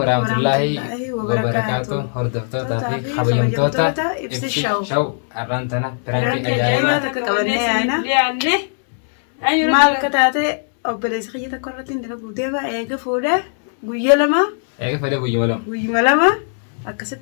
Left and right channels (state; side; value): silent; right; digital silence